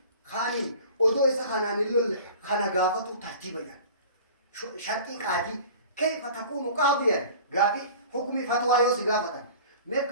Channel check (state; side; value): inverted; both; correlation -0.42